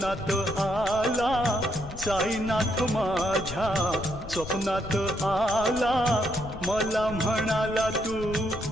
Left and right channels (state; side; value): noise; left; rumble, 13 dB below the sound